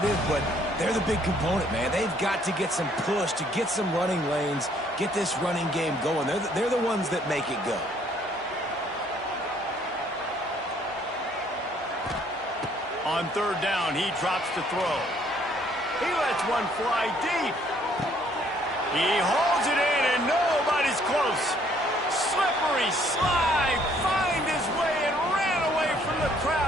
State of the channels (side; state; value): both; normal; correlation 0.64